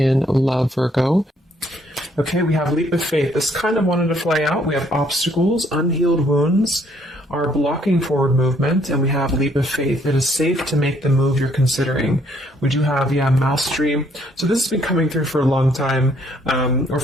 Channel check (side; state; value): both; normal; correlation 0.67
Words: love, Virgo. Okay, we have leap of faith. This kind of wanted to fly out. We have obstacles, unhealed wounds are blocking forward movement, and we have leap of faith. It is safe to make the move you're considering. We do have, mastery. So this has been coming through for a long time, or